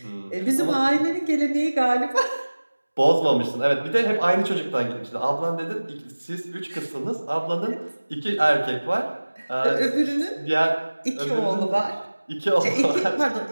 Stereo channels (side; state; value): both; inverted; correlation -1.00